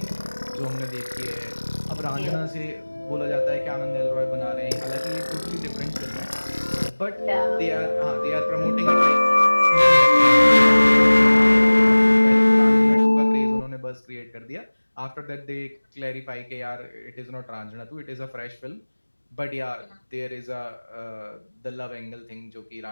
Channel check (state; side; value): inverted; both; correlation -1.00